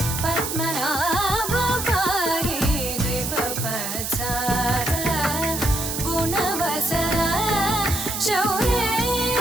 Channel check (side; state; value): right; noise; hiss, 4 dB below the sound